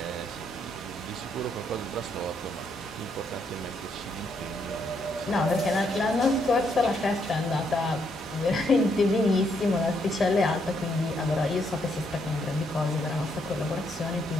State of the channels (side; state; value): both; normal; correlation 0.75